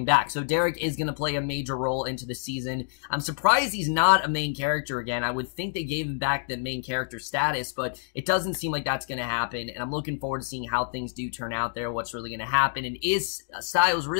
back, so Derek is going to play a major role into the season. I'm surprised he's not a main character again. I would think they gave him back the main character status, but it doesn't seem like that's going to happen, and I'm looking forward to seeing how things do turn out there, what's really going to happen, and is Styles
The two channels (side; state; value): right; silent; digital silence